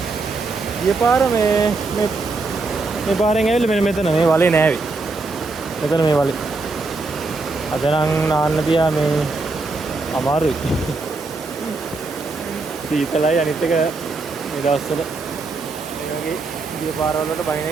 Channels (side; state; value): left; quieter; 3.7 dB